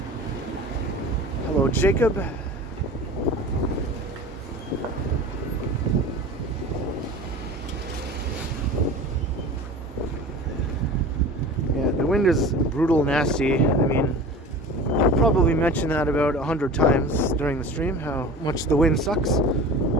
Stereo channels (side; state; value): both; normal; correlation 0.37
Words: Hello, Jacob. Yeah, the wind is brutal, nasty. I mean, I'll probably mention that about 100 times during the stream, how much the wind sucks.